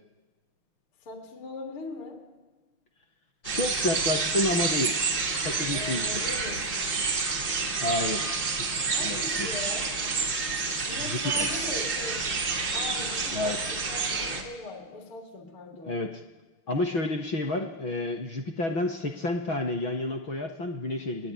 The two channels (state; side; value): late; right; 5.7 ms